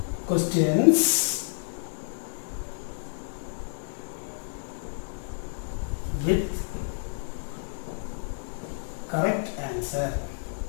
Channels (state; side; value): silent; right; digital silence